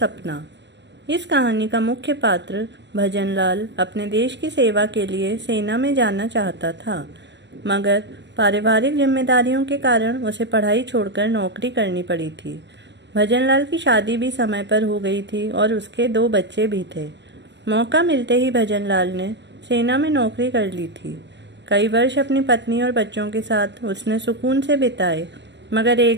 इस कहानी का मुख्य पात्र भजनलाल अपने देश की सेवा के लिए सेना में जाना चाहता था, मगर पारिवारिक जिम्मेदारियों के कारण उसे पढ़ाई छोड़कर नौकरी करनी पड़ी थी। भजनलाल की शादी भी समय पर हो गई थी और उसके 2 बच्चे भी थे। मौका मिलते ही भजनलाल ने सेना में नौकरी कर ली थी। कई वर्ष अपनी पत्नी और बच्चों के साथ उसने सुकून से बिताए, मगर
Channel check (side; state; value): left; late; 0.52 ms